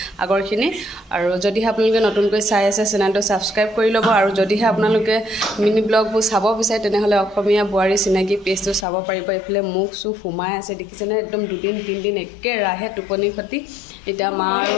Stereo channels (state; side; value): drops out; right; at 8.8 s